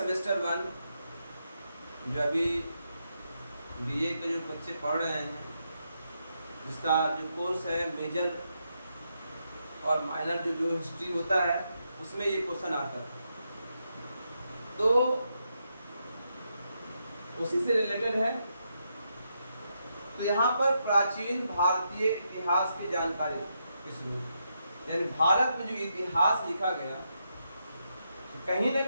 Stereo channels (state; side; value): inverted; both; correlation -0.82